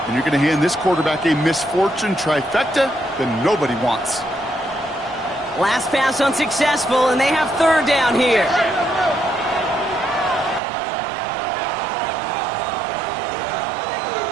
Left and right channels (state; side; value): drops out; left; at 10.6 s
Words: and you're going to hand this quarterback a misfortune trifecta that nobody wants. Last pass unsuccessful, and they have 3rd down here.